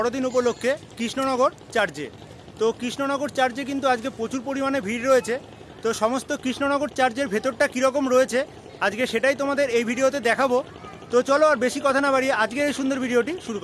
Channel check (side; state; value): both; identical; correlation 1.00